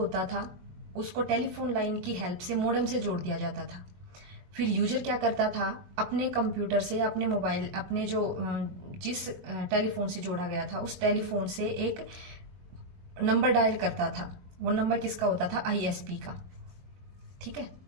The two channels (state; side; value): late; left; 22 ms